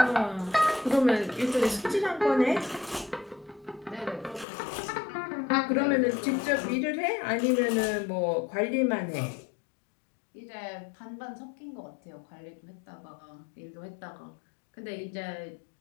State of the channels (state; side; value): drops out; right; at 4.5 s